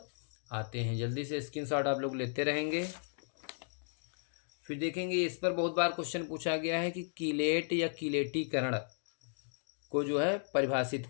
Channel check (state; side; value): silent; right; digital silence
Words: आते हैं। जल्दी से स्क्रीनशॉट आप लोग लेते रहेंगे। फिर देखेंगे इस पर बहुत बार क्वेश्चन पूछा गया है कि कीलेट या कीलेटीकरण को जो है परिभाषित